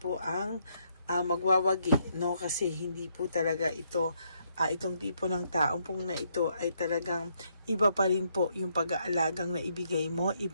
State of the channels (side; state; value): both; inverted; correlation -0.74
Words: ang magwawagi, no? Kasi hindi po talaga ito, itong tipo ng taong pong na ito ay talagang iba pa rin po yung pag-aalagang na ibigay mo,